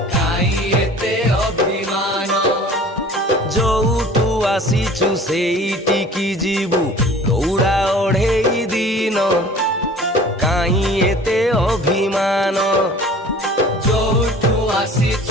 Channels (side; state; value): both; normal; correlation 0.46